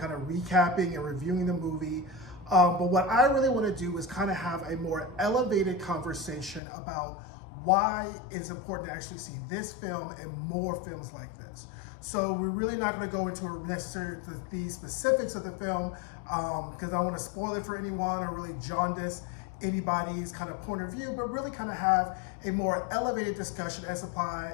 of recapping and reviewing the movie. But what I really want to do is kind of have a more elevated conversation about why it's important to actually see this film and more films like this. So we're really not going to go into necessarily the specifics of the film because I don't want to spoil it for anyone or really jaundice anybody's kind of point of view, but really kind of have a more elevated discussion as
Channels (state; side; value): drops out; right; at 6.6 s